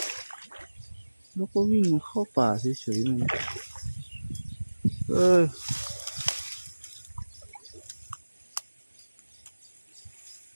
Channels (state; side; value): inverted; both; correlation -1.00